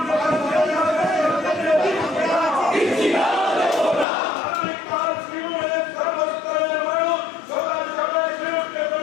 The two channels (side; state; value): right; drops out; at 4.0 s